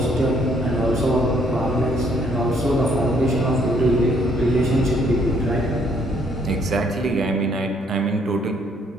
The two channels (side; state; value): both; normal; correlation 0.66